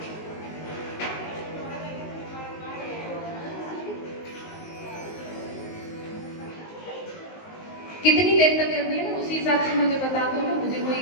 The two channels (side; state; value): right; late; 19 ms